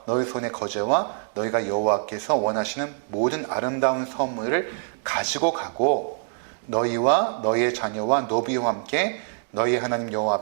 너희 손의 거제와 너희가 여호와께서 원하시는 모든 아름다운 선물을 가지고 가고 너희와 너희의 자녀와 노비와 함께 너희 하나님 여호와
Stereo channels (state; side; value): silent; left; digital silence